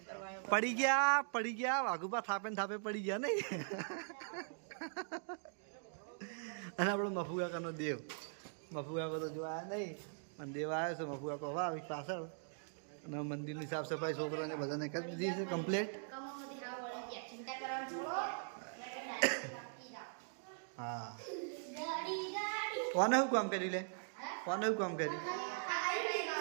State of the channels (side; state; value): left; silent; digital silence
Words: પડી ગયા વાઘુપા થાપે ને થાપે પડી ગયા નહીં. અને આપણો મફુ કાકાનો દેવ, મફુ કાકો તો જોવા નહીં અને દેવ આવ્યો છે. મફુ કાકો હવે આવી પાછળ અને મંદિરની સાફ સફાઈ છોકરાને બધાને કરી દીધી છે કમ્પ્લીટ. હા કોને શું કામ કરી લે, કોને શું કામ કરી